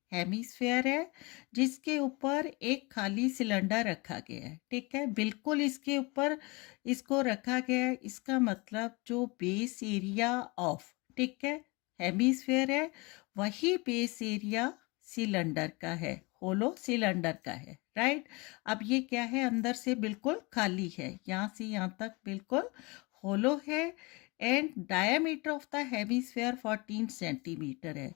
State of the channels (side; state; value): right; quieter; 26.4 dB